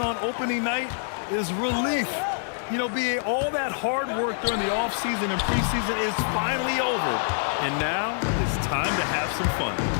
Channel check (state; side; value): silent; right; digital silence